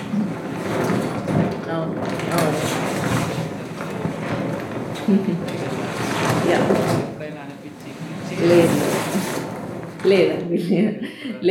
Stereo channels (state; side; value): identical; both; correlation 1.00